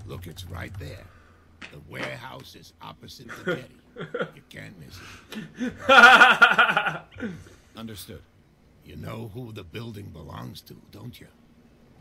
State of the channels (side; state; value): both; identical; correlation 1.00